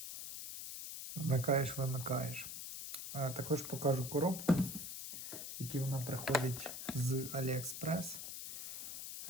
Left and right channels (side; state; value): left; noise; hiss, 7 dB below the sound